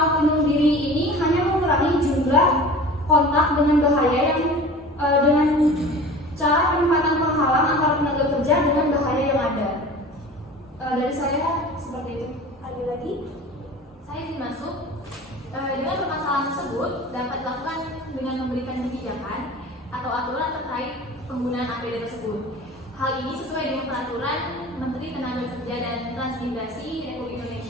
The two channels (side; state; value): both; normal; correlation 0.39